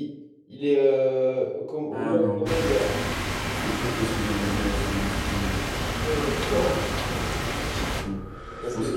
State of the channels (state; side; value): identical; both; correlation 1.00